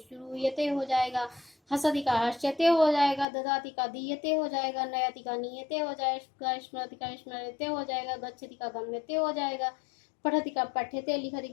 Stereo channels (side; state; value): right; drops out; at 3.2 s